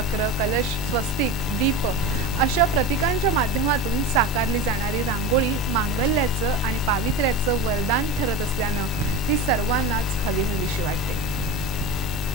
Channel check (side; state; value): both; normal; correlation 0.25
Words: कलश, स्वस्तिक, दीप अशा प्रतीकांच्या माध्यमातून साकारली जाणारी रांगोळी मांगल्याचं आणि पावित्र्याचं वरदान ठरत असल्यानं ती सर्वांनाच हवीहवीशी वाटते।